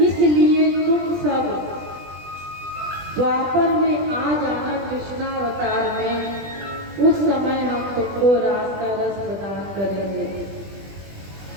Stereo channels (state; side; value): late; left; 20 ms